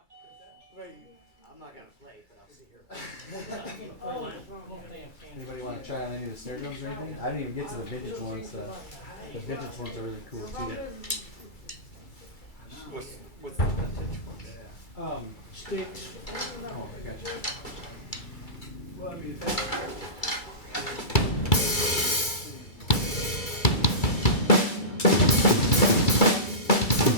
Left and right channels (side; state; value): right; late; 2.3 ms